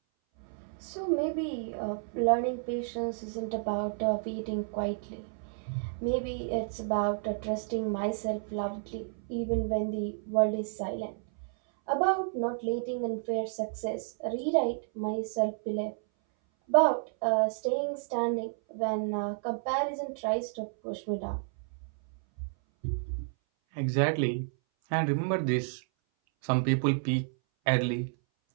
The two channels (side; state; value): left; silent; 57 dB below the other